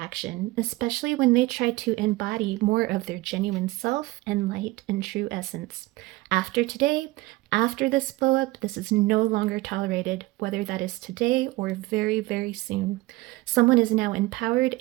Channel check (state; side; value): quieter; left; 20.0 dB